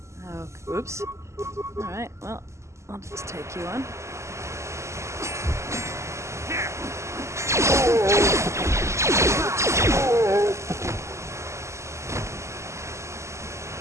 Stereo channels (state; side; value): late; left; 0.13 ms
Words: Oh, oops. Alright, well, I'll just take you on.